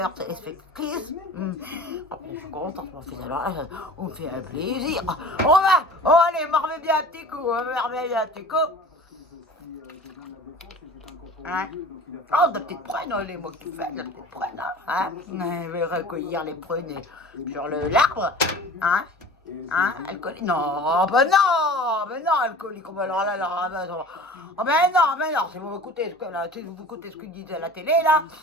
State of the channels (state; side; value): normal; both; correlation 0.41